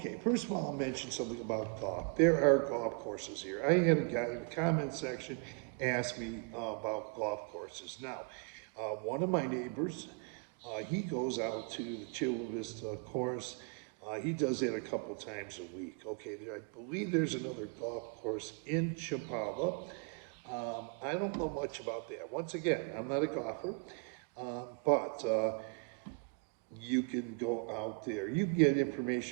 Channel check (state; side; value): quieter; left; 34.5 dB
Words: first of all, I'll mention something about golf. There are golf courses here. I had a guy in the comment section ask me about golf courses. Now, one of my neighbors, he goes out to the Chula Vista course. He does that a couple times a week. Okay, I believe there's another golf course in Chapala. I don't know much about that. Once again, I'm not a golfer, but you can go out there. You can get